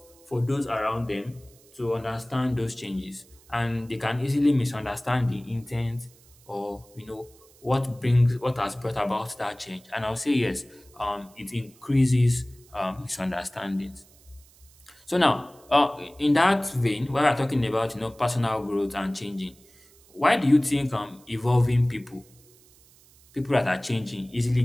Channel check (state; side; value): noise; right; hiss, 27 dB below the sound